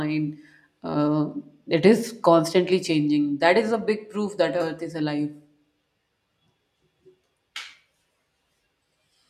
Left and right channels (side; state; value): both; identical; correlation 1.00